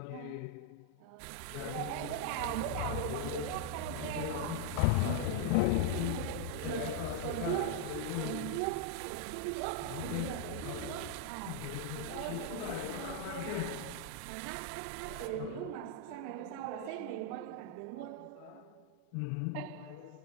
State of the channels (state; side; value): different; both; correlation -0.01